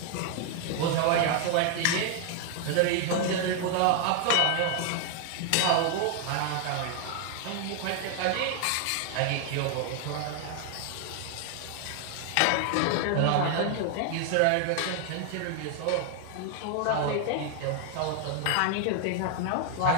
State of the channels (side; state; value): both; different; correlation 0.00